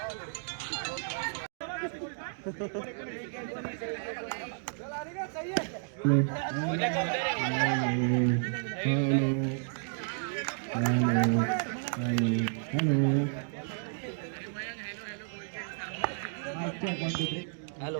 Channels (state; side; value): silent; left; digital silence